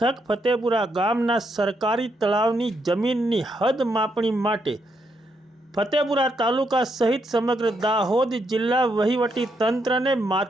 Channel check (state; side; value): normal; both; correlation 0.78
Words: ફતેપુરા ગામના સરકારી તળાવની જમીનની હદ માપણી માટે ફતેપુરા તાલુકા સહિત સમગ્ર દાહોદ જિલ્લા વહીવટી તંત્રને